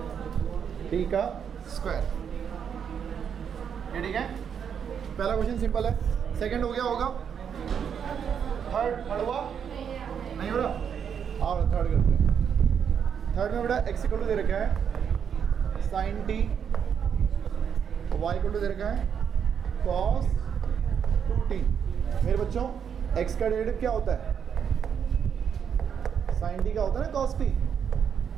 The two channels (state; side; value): quieter; left; 7.6 dB